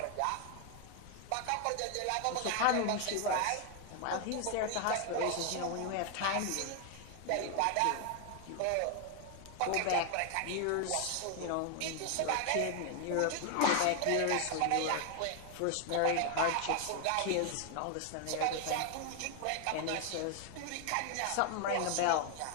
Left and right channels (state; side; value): different; both; correlation 0.01